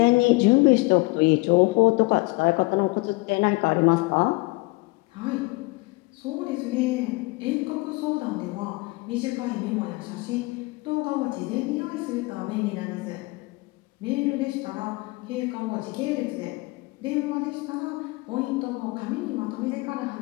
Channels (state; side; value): quieter; right; 24.6 dB